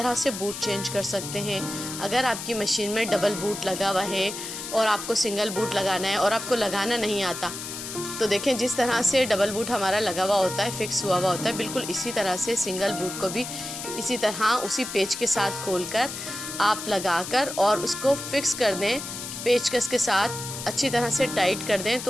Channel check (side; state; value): left; noise; hiss, 8 dB below the sound